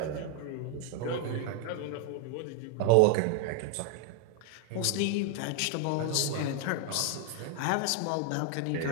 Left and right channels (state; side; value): different; both; correlation 0.00